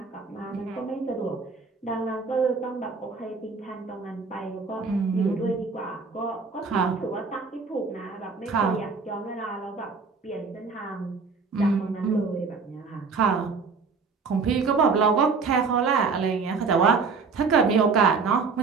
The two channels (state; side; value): quieter; left; 4.8 dB